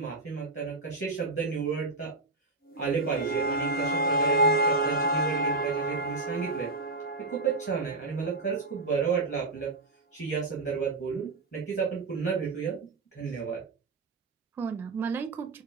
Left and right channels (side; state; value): left; quieter; 3.3 dB